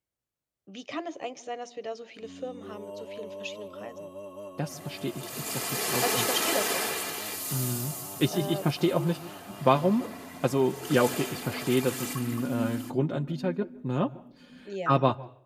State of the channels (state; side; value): identical; both; correlation 1.00